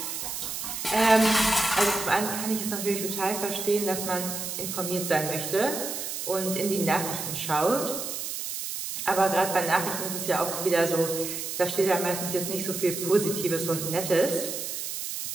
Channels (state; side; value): noise; right; hiss, 5 dB below the sound